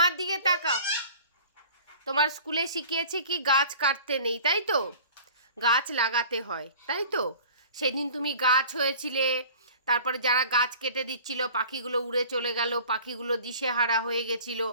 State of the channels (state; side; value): inverted; both; correlation -0.45